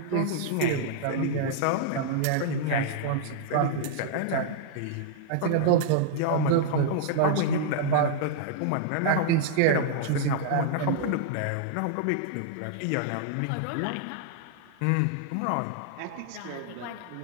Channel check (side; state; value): both; different; correlation -0.01